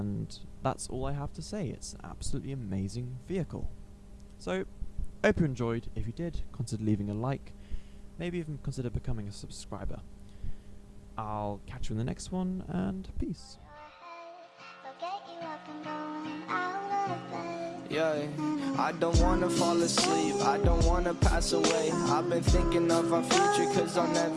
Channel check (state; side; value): identical; both; correlation 1.00